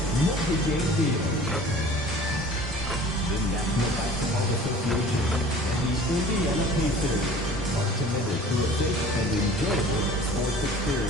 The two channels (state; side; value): normal; both; correlation 0.45